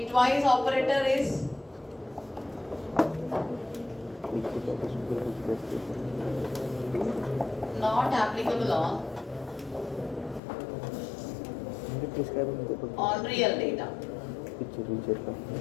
twice operator is not applicable on real data.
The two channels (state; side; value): drops out; right; at 10.4 s